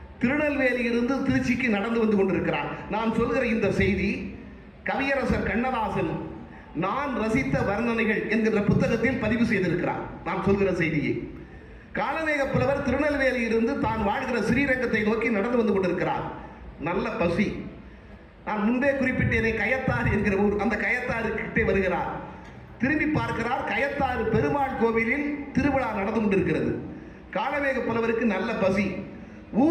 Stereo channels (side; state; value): both; identical; correlation 1.00